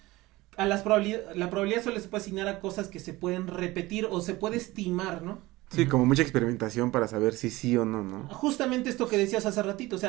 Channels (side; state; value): left; quieter; 19.7 dB